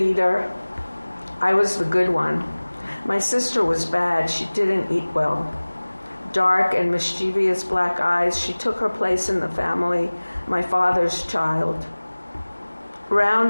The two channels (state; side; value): inverted; both; correlation -1.00